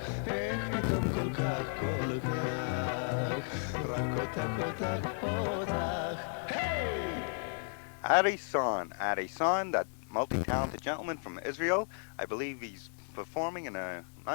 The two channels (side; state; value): right; silent; 55 dB below the other